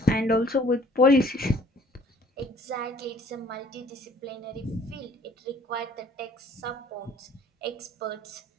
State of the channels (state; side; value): normal; both; correlation 0.56